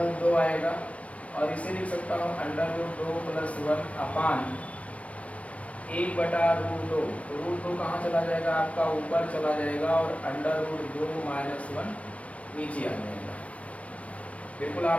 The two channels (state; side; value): late; right; 0.064 ms